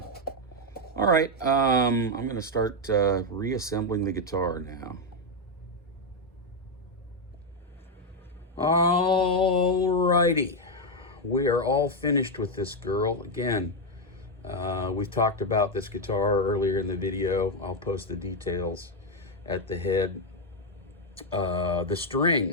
All right, I'm gonna start reassembling the guitar now. Alrighty, we are all finished with this girl. Again, we've talked about this guitar earlier in the video. I'll post the details at the head. The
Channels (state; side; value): normal; both; correlation 0.03